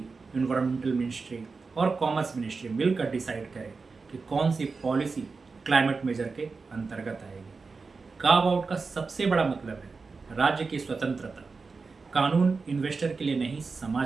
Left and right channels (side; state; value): left; quieter; 4.4 dB